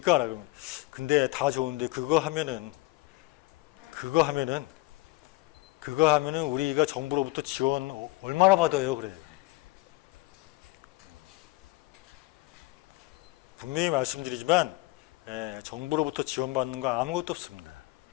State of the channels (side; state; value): right; quieter; 21.8 dB